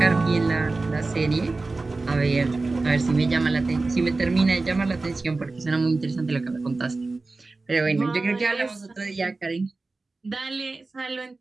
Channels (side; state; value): left; quieter; 3.5 dB